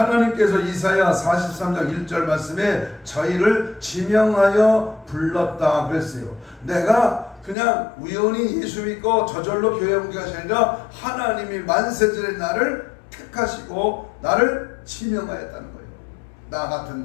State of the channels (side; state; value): right; drops out; at 7.6 s